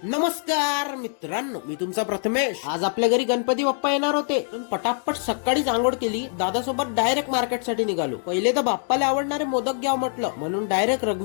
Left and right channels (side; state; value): right; silent; 63 dB below the other